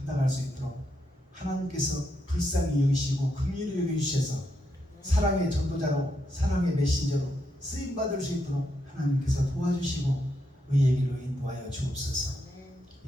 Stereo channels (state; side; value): normal; both; correlation 0.81